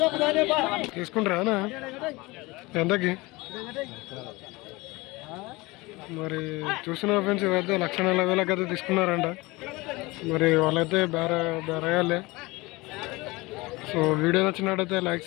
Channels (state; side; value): quieter; right; 22.7 dB